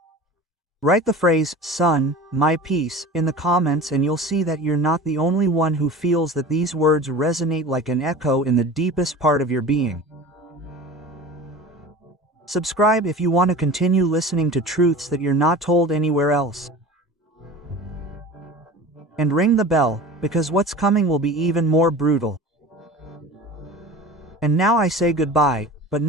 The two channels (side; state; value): both; normal; correlation 0.37